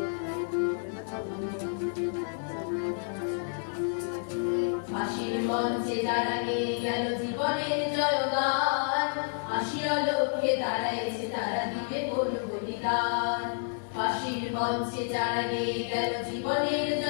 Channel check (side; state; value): right; silent; digital silence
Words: ফাঁসির মঞ্চে যারা গেয়ে গেল জীবনের জয়গান আসিয়া লক্ষ্যে দাঁড়াইছে তারা দিবে কোন বলিদান ফাঁসির মঞ্চে যারা গেয়ে গেল জীবনের